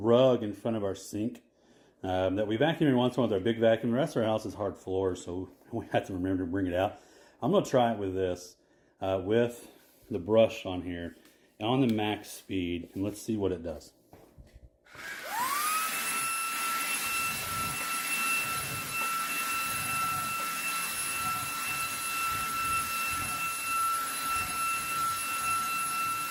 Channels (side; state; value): both; identical; correlation 1.00